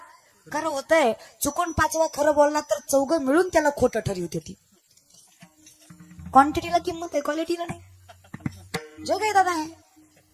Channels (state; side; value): identical; both; correlation 1.00